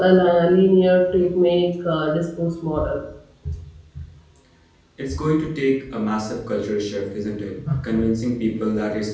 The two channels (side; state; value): both; identical; correlation 1.00